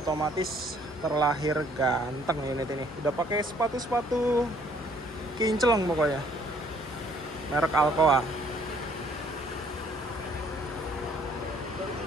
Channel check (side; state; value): both; normal; correlation 0.62